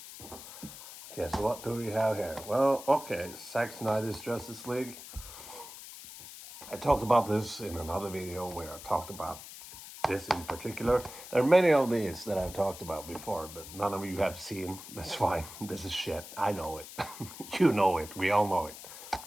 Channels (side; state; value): left; noise; hiss, 14 dB below the sound